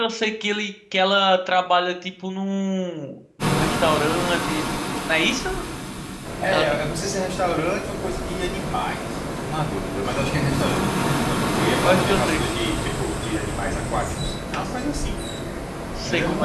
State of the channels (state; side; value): identical; both; correlation 1.00